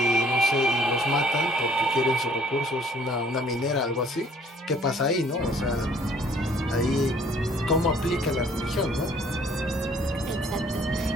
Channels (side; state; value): both; normal; correlation 0.59